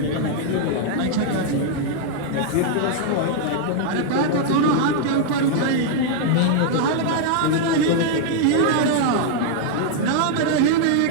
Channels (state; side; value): different; both; correlation 0.00